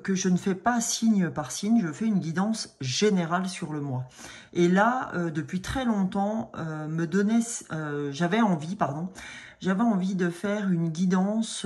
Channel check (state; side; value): identical; both; correlation 1.00